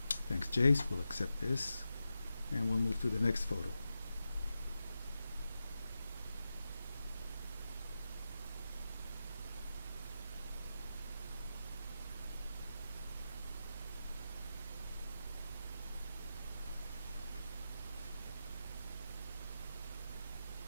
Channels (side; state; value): both; inverted; correlation -0.90